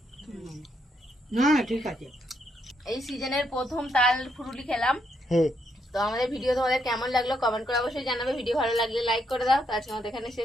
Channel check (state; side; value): normal; both; correlation 0.77